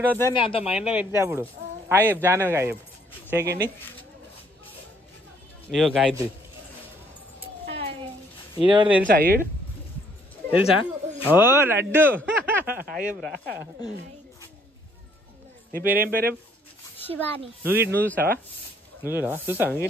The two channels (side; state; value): both; normal; correlation 0.65